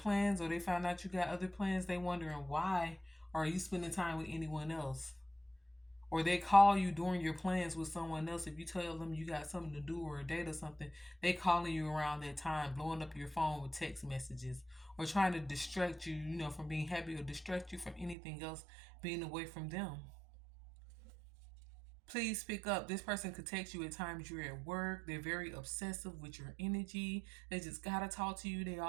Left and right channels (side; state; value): left; drops out; at 18.2 s